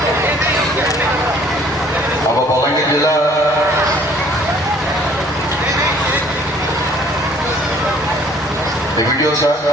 ଆମ ବଲାଙ୍ଗୀର ଜିଲ୍ଲା ଭିଡ଼ିଓ ସାର୍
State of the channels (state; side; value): normal; both; correlation 0.57